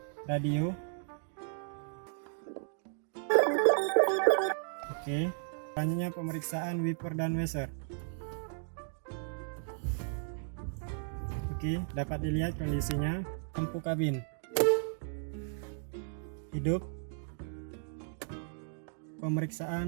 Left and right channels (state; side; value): silent; left; digital silence